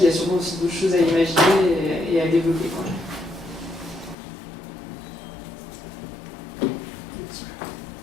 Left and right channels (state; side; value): drops out; right; at 4.2 s